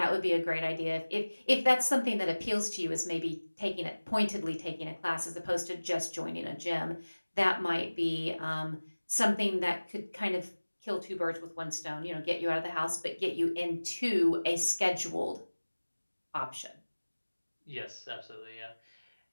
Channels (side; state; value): both; inverted; correlation -1.00